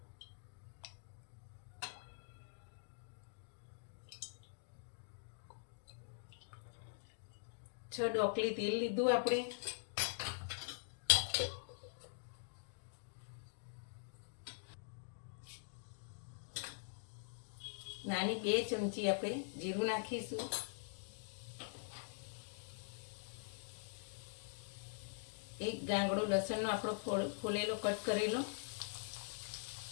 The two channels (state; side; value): silent; right; digital silence